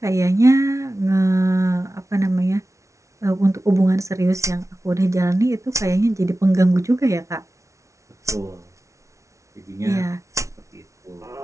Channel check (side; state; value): left; late; 0.14 ms